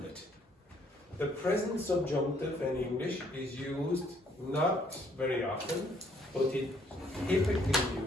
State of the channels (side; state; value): both; normal; correlation 0.65